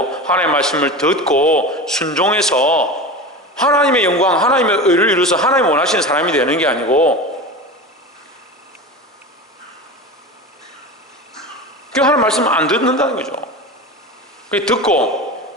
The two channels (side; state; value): both; normal; correlation 0.28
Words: 하나님의 말씀을 듣고 순종해서 하나님의 영광, 하나님의 의를 이루어서 하나님 원하시는 사람이 되는 게 아니고 그 하나님 말씀을 안 듣는다는 거죠. 그 듣고